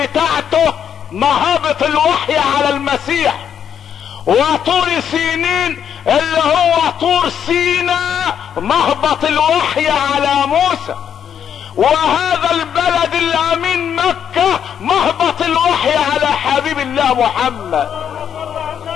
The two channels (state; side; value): quieter; right; 8.6 dB